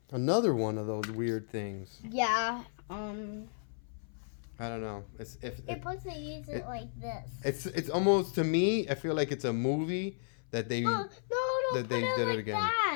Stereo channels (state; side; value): silent; right; 55 dB below the other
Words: another one of those weird things. Yeah. I don't know. It's supposed to use it like this. it's almost, to me, I feel like it's a movie that they No, that they put it did it like again.